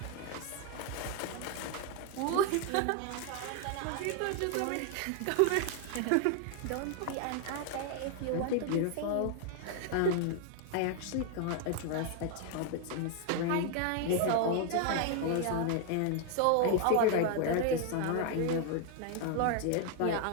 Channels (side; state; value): both; different; correlation 0.00